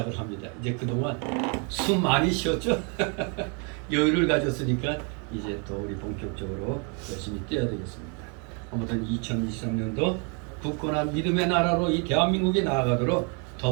합니다. 이제 그동안 숨 많이 쉬었죠? 여유를 가졌으니까 이제 또 우리 본격적으로 열심히 뛰어야 되겠습니다. 아무튼 2023년도 굳건한 믿음의 나라로 이 대한민국이 나아가도록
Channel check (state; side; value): quieter; left; 36.5 dB